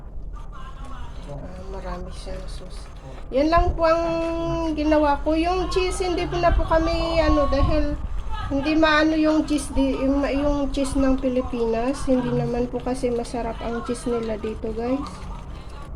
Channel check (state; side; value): identical; both; correlation 1.00